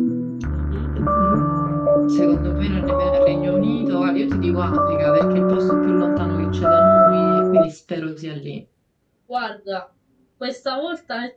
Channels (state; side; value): identical; both; correlation 1.00